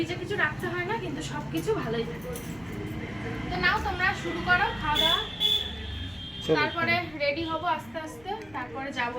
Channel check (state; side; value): noise; left; rumble, 25 dB below the sound